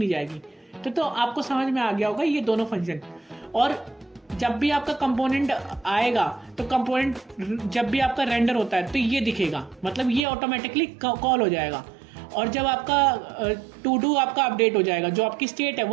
जाएगी। तो आपको समझ में आ गया होगा ये दोनों फंक्शन। और जब भी आपका कंपोनेंट आएगा तो कंपोनेंट जब भी आपका रेंडर होता है तो ये दिखेगा, मतलब ये ऑटोमेटिकली कॉल हो जाएगा। और जब आपका टू डू आपका अपडेट हो जाएगा, जो आपकी स्टेट है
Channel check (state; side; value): drops out; left; at 10.2 s